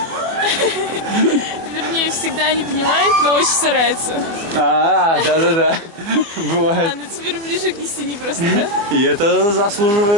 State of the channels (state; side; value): late; left; 25 ms